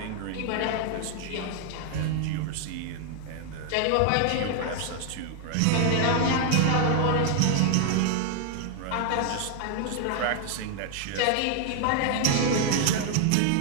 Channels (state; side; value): different; both; correlation 0.00